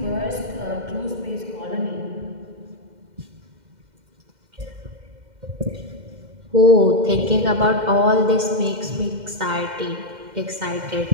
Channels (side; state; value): left; late; 2.1 ms